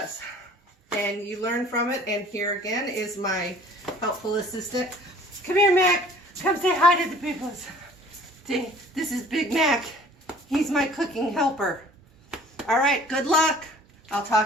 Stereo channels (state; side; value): normal; both; correlation 0.51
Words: and you learn from it. And here again is my helpful assistant. Come here, Mac. Come say hi to the people. This is Big Mac. He's my cooking helper. All right, good luck. I'll